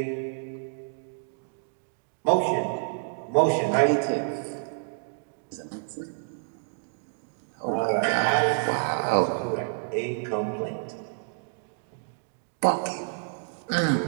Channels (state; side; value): silent; left; digital silence